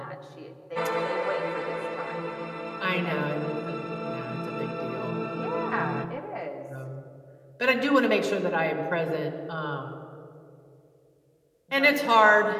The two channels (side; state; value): both; identical; correlation 1.00